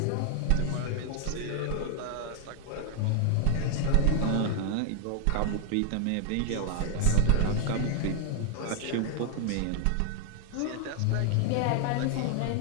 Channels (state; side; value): different; both; correlation 0.00